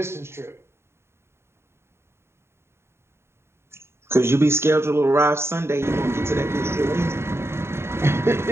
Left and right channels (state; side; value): late; left; 0.12 ms